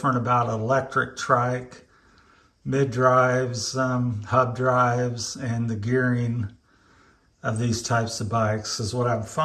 about electric trike, mid drives, hub drives, and the gearing of these types of bikes is what I'm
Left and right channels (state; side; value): identical; both; correlation 1.00